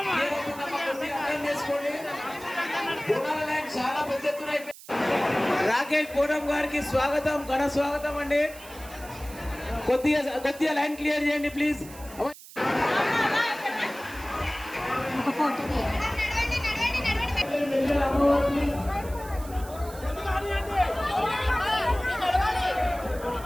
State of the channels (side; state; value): right; noise; hiss, 18 dB below the sound